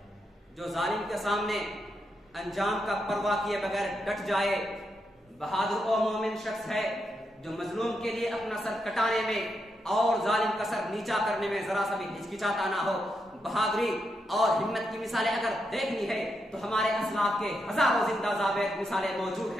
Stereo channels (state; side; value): normal; both; correlation 0.83